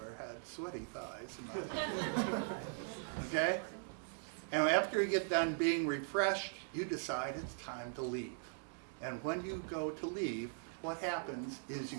had sweaty thighs in my life. Okay? And after you get done being refreshed, you decide it's time to leave. And when you go to leave, what happens is you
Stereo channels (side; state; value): left; silent; digital silence